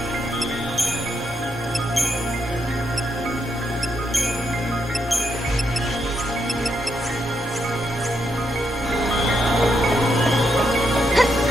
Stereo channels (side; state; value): both; normal; correlation 0.79